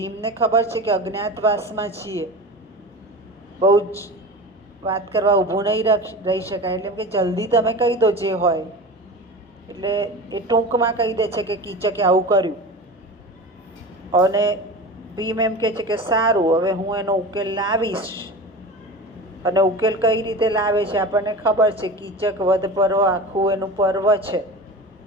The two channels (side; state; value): both; normal; correlation 0.31